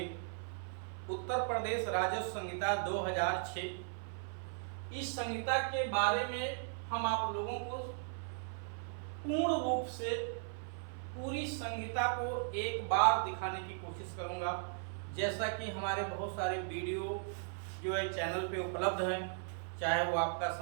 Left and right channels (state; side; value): silent; left; 53 dB below the other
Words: उत्तर प्रदेश राजस्व संहिता 2006। इस संहिता के बारे में हम आप लोगों को पूर्ण रूप से पूरी संहिता को एक बार दिखाने की कोशिश करूंगा। जैसा कि हमारे बहुत सारे वीडियो जो है चैनल पे उपलब्ध हैं, चाहे वो आपका